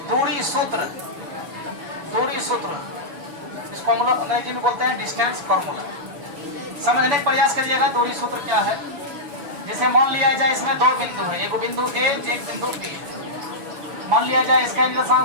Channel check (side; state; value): left; late; 6.1 ms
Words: दूरी सूत्र। दूरी सूत्र इसको हम लोग अंग्रेजी में बोलते हैं डिस्टेंस फॉर्मूला। समझने का प्रयास करिएगा दूरी सूत्र क्या है। जैसे मान लिया जाए इसमें दो बिंदु है, एक बिंदु ए एक बिंदु बी है। मान लिया जाए इसका